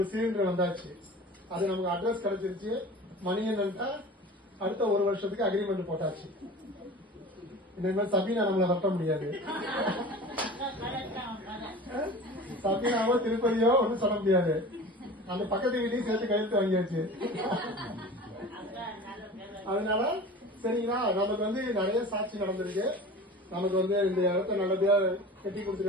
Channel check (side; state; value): both; normal; correlation 0.38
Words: சிலிண்டர் வந்தாச்சு. அது நமக்கு அட்ரஸ் கிடைச்சிருச்சு. மணி என்னன்ட்டா அடுத்த ஒரு வருஷத்துக்கு அக்ரிமெண்ட் போட்டாச்சு. இனிமேல் சபீனா நம்மளை வரட்ட முடியாது. சபீனாவோ திருப்பதியோ ஒன்றும் சொல்ல முடியாது. அந்த பக்கத்து வீட்டையும் சேர்த்து கையெழுத்து வாங்கியாச்சு. அதனால சரிங்களா, நமக்கு வந்து நிறைய சாட்சி நடந்திருக்கு. நமக்கு வந்து இந்த இடத்த நல்லபடியா கட்டி